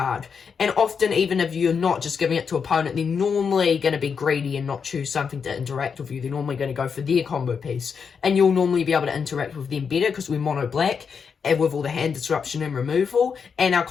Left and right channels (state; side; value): quieter; right; 6.2 dB